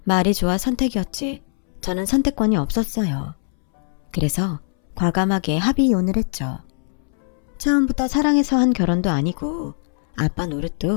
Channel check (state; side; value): silent; right; 65 dB below the other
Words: 말이 좋아 선택이었지 저는 선택권이 없었어요. 그래서 과감하게 합의 이혼을 했죠. 처음부터 사랑해서 한 결혼도 아니고 아빠